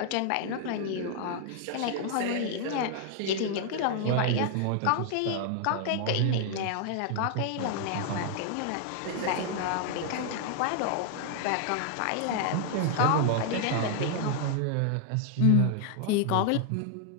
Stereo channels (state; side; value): different; both; correlation 0.00